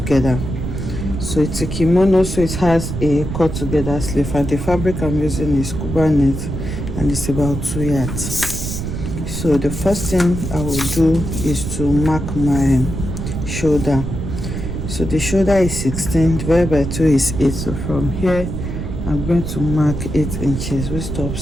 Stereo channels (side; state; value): right; noise; rumble, 5 dB below the sound